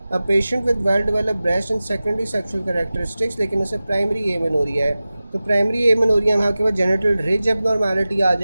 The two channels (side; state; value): both; inverted; correlation -0.96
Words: A patient with well develop breast and secondary sexual characteristics, लेकिन उसे प्राइमरी एमेनोरिया है, तो प्राइमरी एमेनोरिया में आपके पास जेनिटल रिज एबनॉर्मेलिटी आ